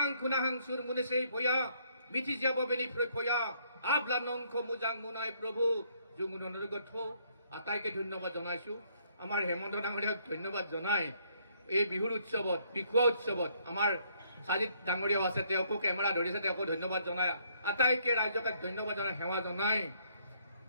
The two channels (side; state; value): both; inverted; correlation -0.67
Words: খুনাহাং সুৰ মুনেছেই ভয়া মিঠি যাব বেনি ফয়া আবলা নংখ মুজাং মুনাই প্ৰভু জংগুদৈ গঠ আটাইকে ধন্যবাদ জনাইছো আমাৰ হেমন্ত ডাঙৰীয়াক ধন্যবাদ জনাই এই বিহুৰ উৎসৱত বিহুৱা উৎসৱত আমাৰ সাজিত ডাঙৰীয়াও আছে তেওঁকো কেমেৰা ধৰিছে তেওঁকো ধন্যবাদ জনাই আটাইকে ৰাইজকে ধন্যবাদ জনাই সেৱা জনাই